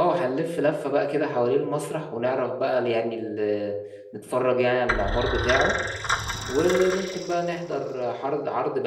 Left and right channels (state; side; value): identical; both; correlation 1.00